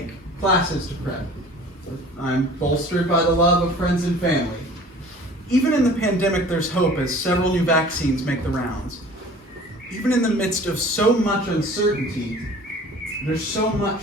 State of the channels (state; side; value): normal; both; correlation 0.46